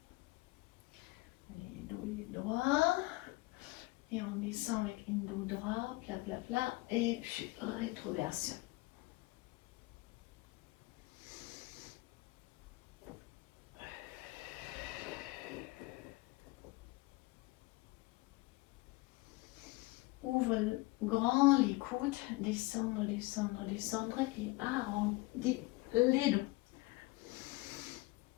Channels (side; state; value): right; quieter; 22.0 dB